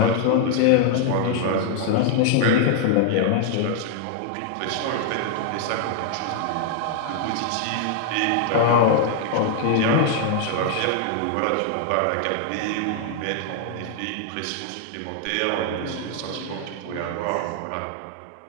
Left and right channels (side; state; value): both; different; correlation 0.00